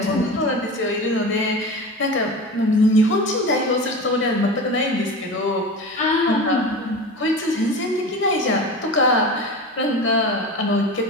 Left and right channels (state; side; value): normal; both; correlation 0.30